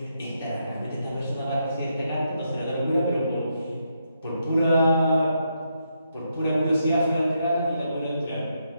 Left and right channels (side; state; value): both; inverted; correlation -0.80